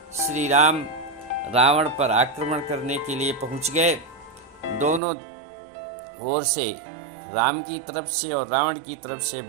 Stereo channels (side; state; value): left; drops out; at 5.0 s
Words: श्री राम रावण पर आक्रमण करने के लिए पहुंच गए। दोनों ओर से, राम की तरफ से और रावण की तरफ से